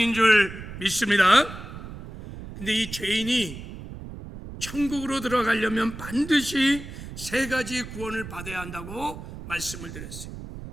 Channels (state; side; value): noise; right; rumble, 11 dB below the sound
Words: 줄 믿습니다. 근데 이 죄인이 천국으로 들어가려면 반드시 세 가지 구원을 받아야 한다고 말씀을 드렸어요.